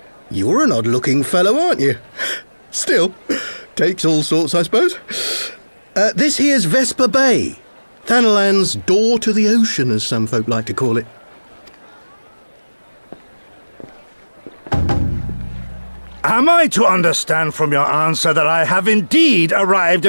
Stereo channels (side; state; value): both; inverted; correlation -1.00